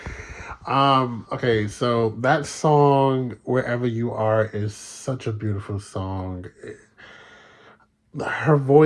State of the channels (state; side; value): identical; both; correlation 1.00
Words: Okay, so that song, Wherever You Are, is such a beautiful song. Her